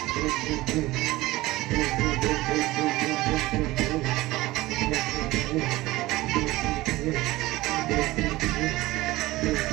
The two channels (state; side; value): quieter; left; 18.7 dB